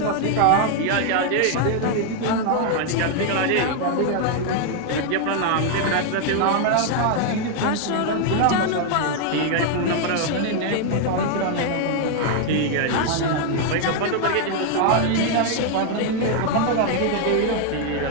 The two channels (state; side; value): different; both; correlation 0.00